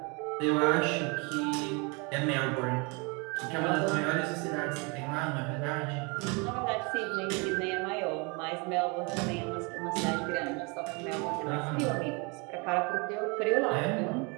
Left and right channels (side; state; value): left; quieter; 30.5 dB